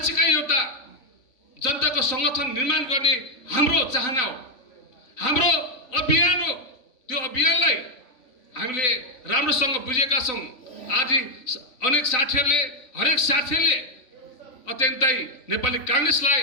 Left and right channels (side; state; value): right; late; 3.5 ms